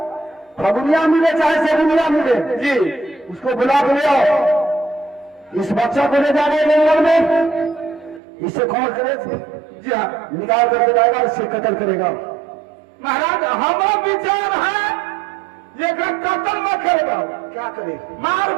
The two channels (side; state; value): left; drops out; at 8.2 s